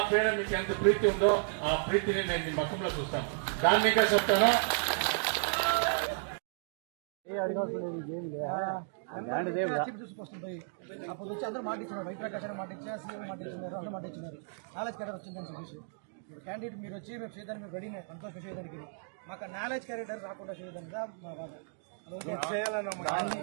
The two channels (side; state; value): left; silent; digital silence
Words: పైన మీకు ఎంత ప్రీతి ఉందో ఆ ప్రీతిని నేను మీ ముఖంలో చూస్తాను. దాన్ని ఇంకా చెప్తాను. అప్పుడు వచ్చి అందరూ మాటిస్తున్నారు, వైప్రకాశ్ మాట ఇచ్చారు, సీఎం మాట ఇచ్చినారు, అందరూ మాట ఇచ్చినారు. నాలెడ్జ్ క్యారెక్టర్ వచ్చిందని చెప్పేసి ఇప్పుడు క్యాండిడేట్ మీరు వచ్చి మేము చేయడానికి మేము రెడీనే, సంతోషం చేయడానికి. మాకు నాలెడ్జ్ క్యారెక్టర్ రాకుండా చేయడానికి మా బాధ.